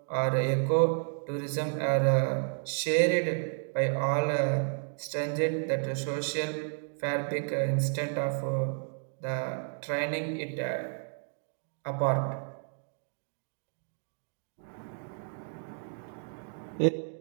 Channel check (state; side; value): silent; left; 57 dB below the other